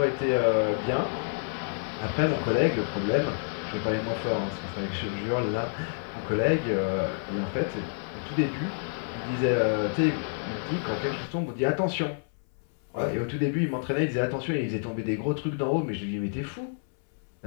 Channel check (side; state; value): right; silent; 59 dB below the other